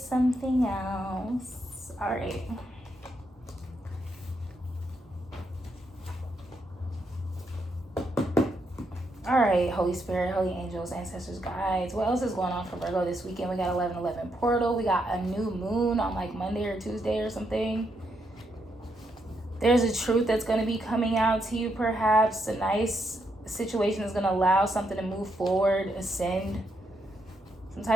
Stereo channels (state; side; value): normal; both; correlation 0.79